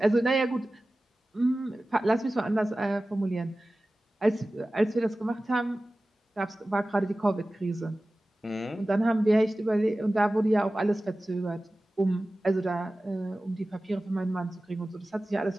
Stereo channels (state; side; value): normal; both; correlation 0.96